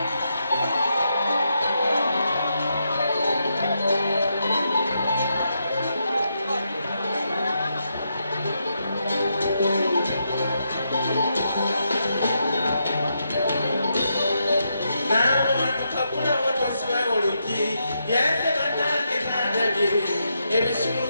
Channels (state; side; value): inverted; both; correlation -0.82